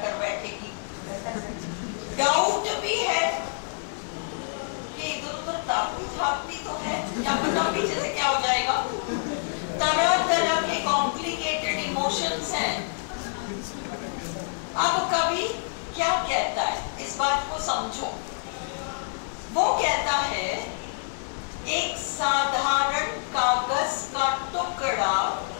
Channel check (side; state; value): right; silent; 60 dB below the other